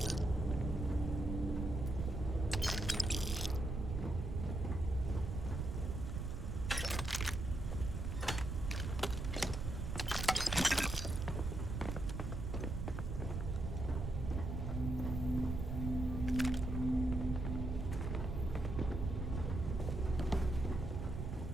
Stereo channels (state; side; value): noise; right; rumble, 3 dB below the sound